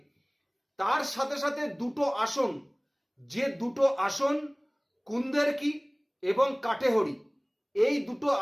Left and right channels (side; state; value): both; identical; correlation 1.00